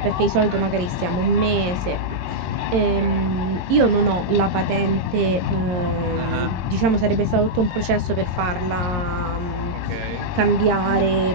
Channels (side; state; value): left; late; 22 ms